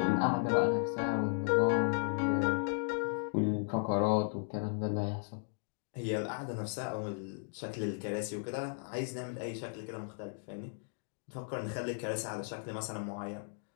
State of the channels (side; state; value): right; silent; digital silence